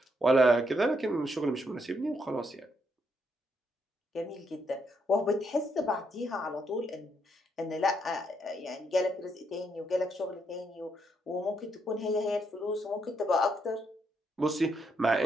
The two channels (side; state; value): both; normal; correlation 0.76